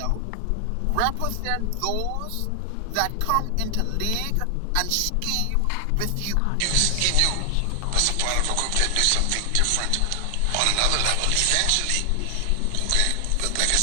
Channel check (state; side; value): different; both; correlation 0.00